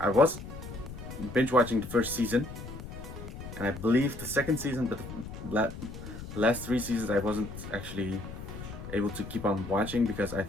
was binge watching the first season, and I believe the second season, but the last 3 seasons I wasn't actually able to keep on watching because I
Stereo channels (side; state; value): left; noise; rumble, 11 dB below the sound